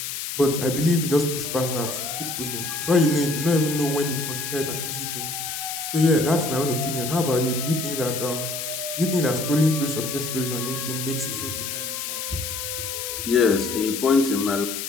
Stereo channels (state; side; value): noise; left; hiss, 5 dB below the sound